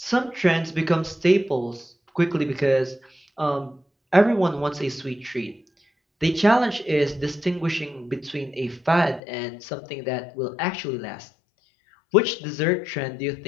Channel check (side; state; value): right; drops out; at 9.2 s